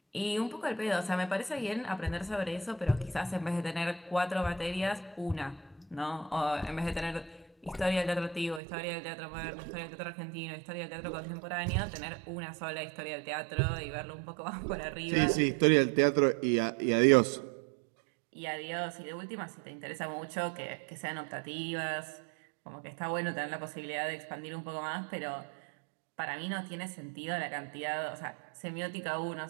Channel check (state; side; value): drops out; left; at 8.6 s